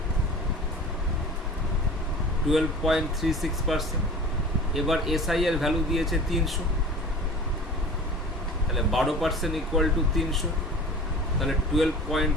12.36%। এবার এসআই এর ভ্যালু দিয়েছে 300, তাহলে 12% ইকুয়াল টু 300, তাহলে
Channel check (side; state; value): both; normal; correlation 0.39